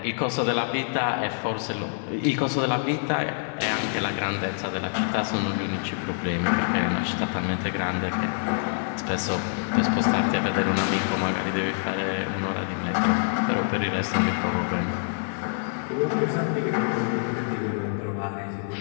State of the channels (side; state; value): right; silent; digital silence